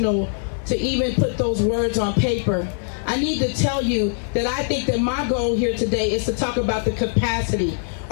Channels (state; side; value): silent; right; digital silence